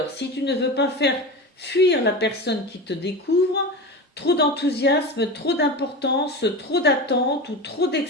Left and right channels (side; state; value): both; normal; correlation 0.26